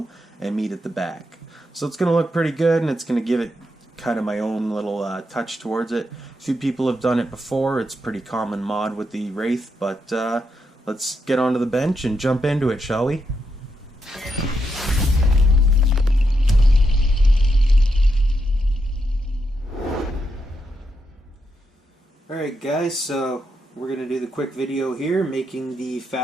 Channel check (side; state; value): both; normal; correlation 0.82